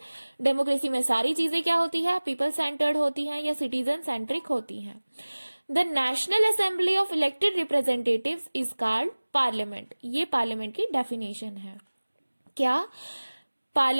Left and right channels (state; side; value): inverted; both; correlation -1.00